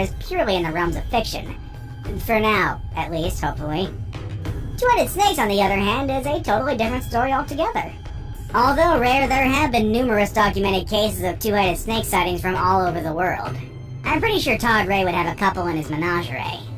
purely in the realms of fiction. For now, at least, hopefully. Two-headed snakes, on the other hand, is a totally different story altogether. Although rare, there have been numerous documented cases of two-headed snake sightings from all over the world. I'm pretty sure Todd Ray would have a couple in his menagerie.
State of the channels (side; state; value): both; identical; correlation 1.00